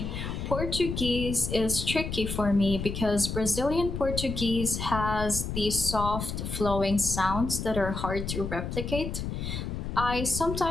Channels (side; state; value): left; noise; rumble, 5 dB below the sound